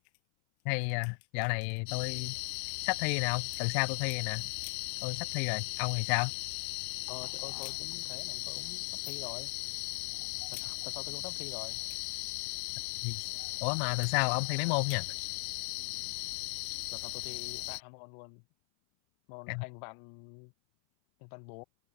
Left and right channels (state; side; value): silent; right; 53 dB below the other